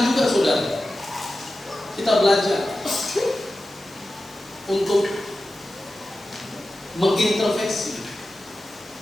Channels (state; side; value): normal; both; correlation 0.94